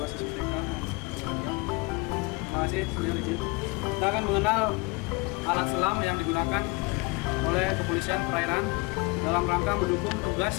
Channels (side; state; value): right; quieter; 26.8 dB